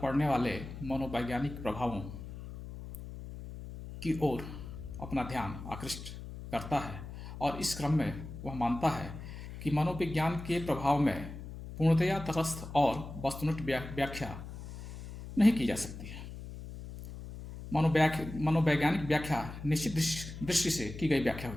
वाले मनोवैज्ञानिक प्रभावों की ओर अपना ध्यान आकृष्ट करता है, और इस क्रम में वह मानता है कि मनोविज्ञान के प्रभाव में पूर्णतया तटस्थ और वस्तुनिष्ठ व्याख्या नहीं की जा सकती है। मनोवैज्ञानिक व्याख्या निश्चित दृष्टि से की गई व्याख्या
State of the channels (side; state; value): left; noise; hum, 11 dB below the sound